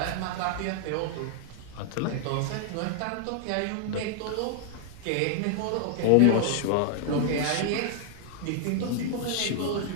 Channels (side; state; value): both; different; correlation 0.00